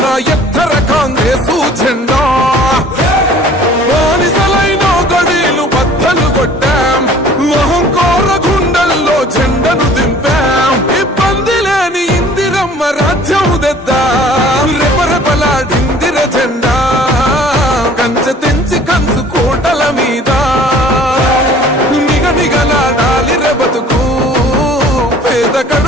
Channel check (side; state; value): both; normal; correlation 0.51